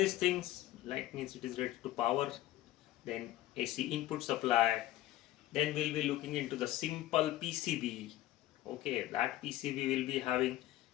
things like means it is related to power. Then AC input supply. Then we'll be looking into the simple PCB. Okay, that PCB will be having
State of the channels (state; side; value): quieter; right; 15.2 dB